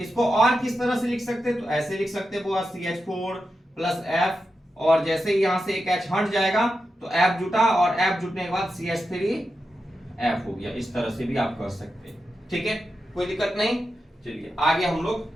और किस तरह से लिख सकते हैं? तो ऐसे लिख सकते हैं CH4 प्लस F, और जैसे ही यहां से एक H हट जाएगा तो F जुटा और F जुटने के बाद CH3 F हो गया। इस तरह से भी आप कर सकते हैं, ठीक है, कोई दिक्कत नहीं। चलिए आगे हम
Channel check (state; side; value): normal; both; correlation 0.89